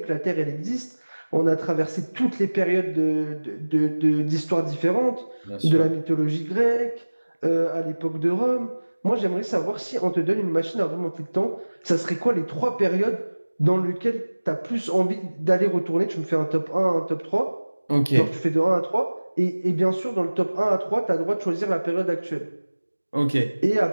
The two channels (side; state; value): both; inverted; correlation -1.00